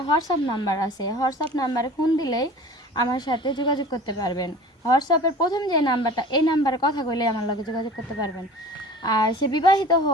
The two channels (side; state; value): both; normal; correlation 0.42